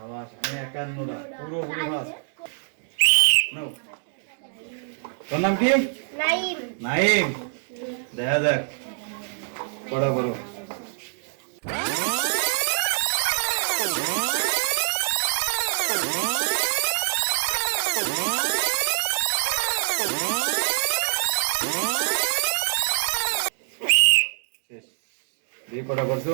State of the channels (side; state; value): left; silent; digital silence